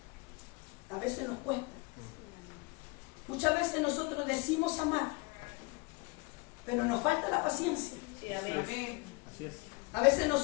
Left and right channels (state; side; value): quieter; right; 26.9 dB